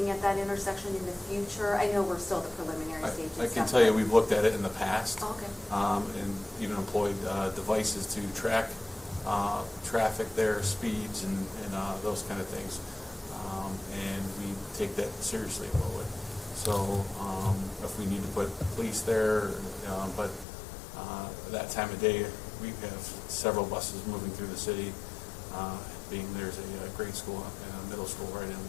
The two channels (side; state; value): right; drops out; at 20.5 s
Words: at that intersection in the future? I know we're still at the preliminary stage and I can stuff, tell you, but- we've looked at it in the past. Oh, okay. And even employed devices to track traffic there, speeds, and those kind of things. And we take that seriously a little bit. So if we need to put police there, but that time of day, we have several buses moving through the city, being there's a grade school and a middle school right in